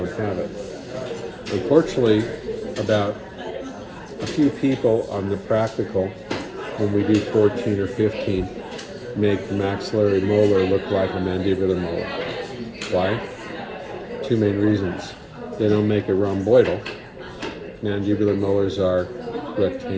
have it. Unfortunately, about a few people on the practical, when we do 14 or 15, make the maxillary molar look like a mandibular molar. Why? 2 main reasons. They don't make it rhomboidal. Mandibular molars are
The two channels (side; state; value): both; identical; correlation 1.00